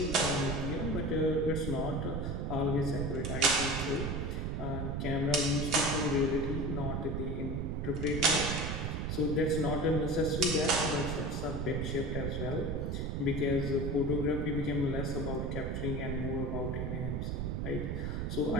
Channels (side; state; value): right; noise; rumble, 1 dB below the sound